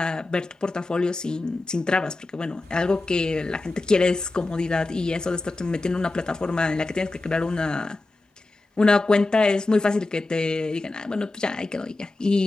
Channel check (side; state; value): right; quieter; 3.0 dB